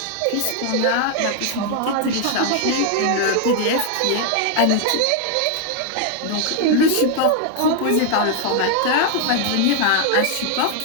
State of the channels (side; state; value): both; different; correlation 0.00